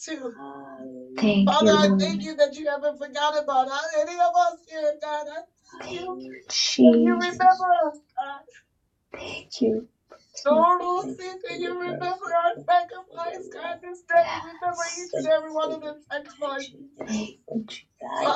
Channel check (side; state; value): both; identical; correlation 1.00